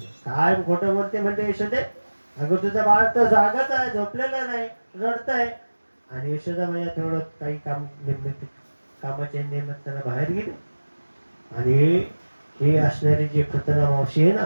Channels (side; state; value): both; inverted; correlation -1.00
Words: काय खोटं बोलते म्हणते यशोदे, अगं तुझं बाळ तर जागच आहे, झोपलेलं नाही, रडतंय. आणि यशोदा मैया थोडं काही कामाच्या निमित्तानं बाहेर गेले, आणि ही असणारी जी पुतना मावशी आहे ना,